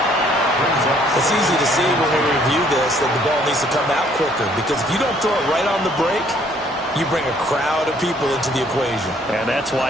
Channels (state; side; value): normal; both; correlation 0.63